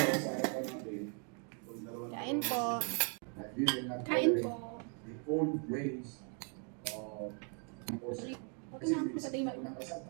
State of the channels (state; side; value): quieter; left; 39.9 dB